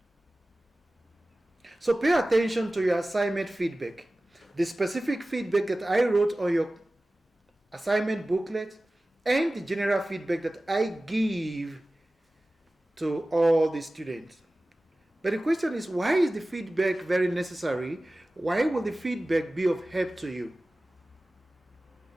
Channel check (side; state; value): both; normal; correlation 0.97